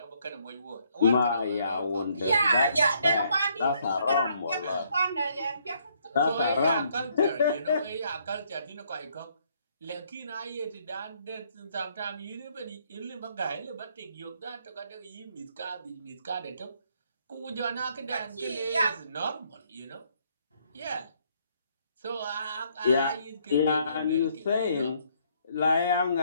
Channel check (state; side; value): inverted; both; correlation -0.69